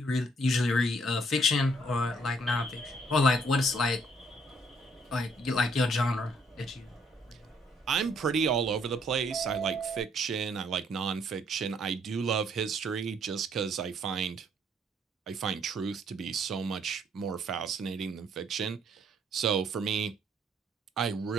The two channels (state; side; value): normal; both; correlation 0.67